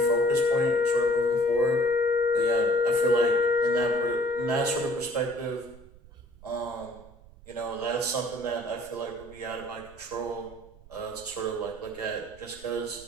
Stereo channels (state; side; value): noise; right; rumble, 22 dB below the sound